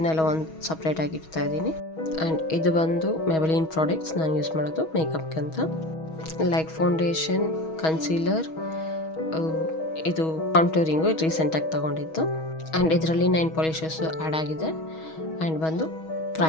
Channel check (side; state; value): right; late; 6.3 ms